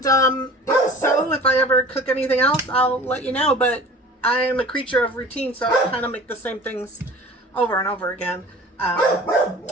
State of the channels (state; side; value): normal; both; correlation 0.42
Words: if so, if I ever cook anything else, I'll let you know. But I'm a creature of routine, so I kind of make the same things over and over again.